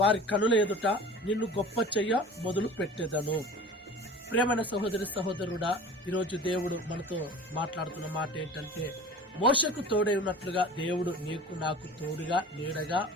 వారి కనుల ఎదుట నిన్ను గొప్ప చెయ్య మొదలు పెట్టెదను. ప్రేమైన సహోదరి సహోదరుడా, ఈరోజు దేవుడు మనతో మాట్లాడుతున్న మాట ఏంటంటే, మోషకు తోడై ఉన్నట్లుగా దేవుడు నీకు నాకు తోడుగా నీడగా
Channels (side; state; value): both; normal; correlation 0.40